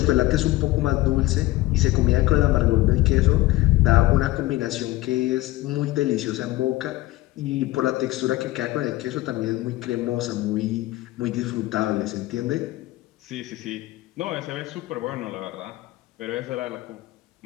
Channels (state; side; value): quieter; right; 18.0 dB